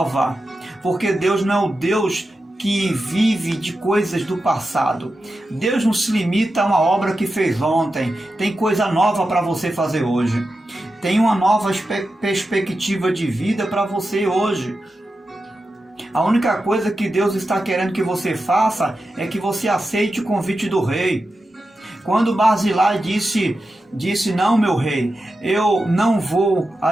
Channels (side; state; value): both; normal; correlation 0.91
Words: Porque Deus não é o Deus que vive de coisas do passado. Deus não se limita a uma obra que fez ontem. Tem coisa nova para você fazer hoje. Tem uma nova perspectiva de vida para você hoje. A única coisa que Deus está querendo que você faça é que você aceite o convite do rei. Quando Barzilai disse, não, meu rei, eu não vou